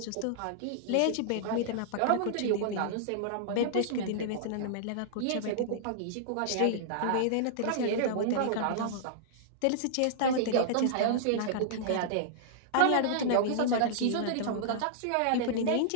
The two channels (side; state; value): both; different; correlation -0.02